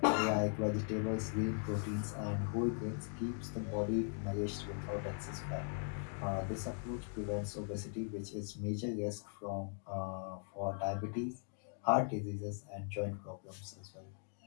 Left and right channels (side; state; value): right; silent; 51 dB below the other